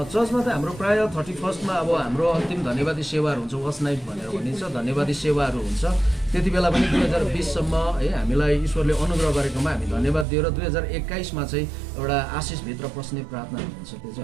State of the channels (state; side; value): drops out; left; at 10.2 s